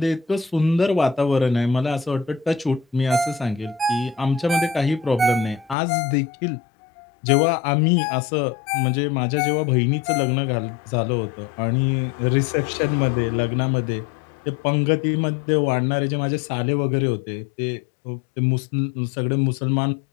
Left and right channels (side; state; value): right; drops out; at 5.8 s